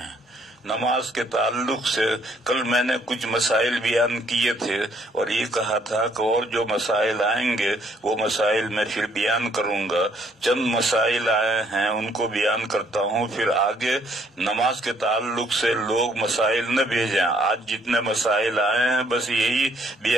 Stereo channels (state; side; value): normal; both; correlation 0.67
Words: نماز کے تعلق سے کل میں نے کچھ مسائل بیان کیے تھے، اور یہ کہا تھا کہ اور جو مسائل آئیں گے وہ مسائل میں پھر بیان کروں گا۔ چند مسائل آئے ہیں ان کو بیان کرتا ہوں، پھر آگے نماز کے تعلق سے لوگ مسائل نہ بھیجیں، آج جتنے مسائل آئے ہیں بس یہی